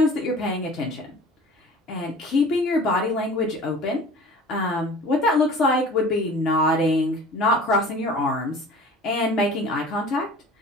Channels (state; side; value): normal; both; correlation 0.42